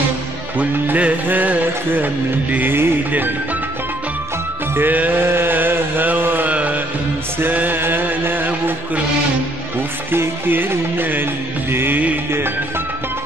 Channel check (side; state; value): both; normal; correlation 0.66